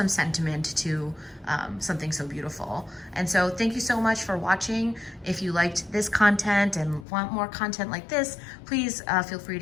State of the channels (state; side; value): drops out; right; at 7.1 s